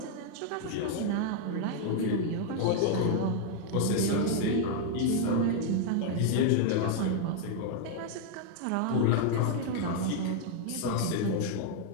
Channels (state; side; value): different; both; correlation 0.00